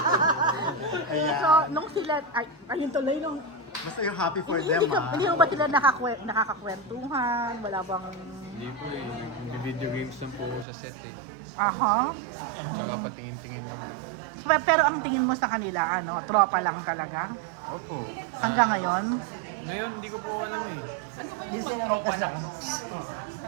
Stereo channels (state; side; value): drops out; left; at 10.7 s